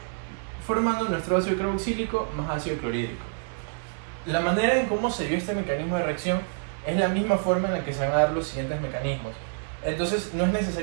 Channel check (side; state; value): left; silent; digital silence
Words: formando nuestro ácido carboxílico más ácido clorhídrico. La manera en cómo se dio este mecanismo de reacción es la misma forma en la que se van a dar los siguientes mecanismos. Entonces no es